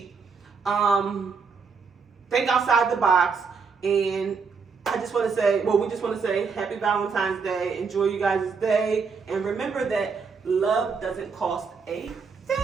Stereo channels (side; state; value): left; quieter; 5.3 dB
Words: Think outside the box, and we just want to say happy Valentine's Day. Enjoy you guys' day, and remember that love doesn't cost a